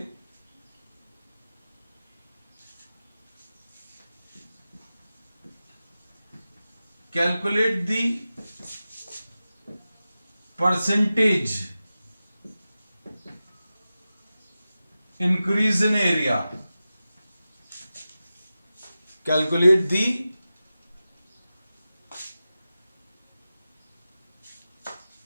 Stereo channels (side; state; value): both; inverted; correlation -0.94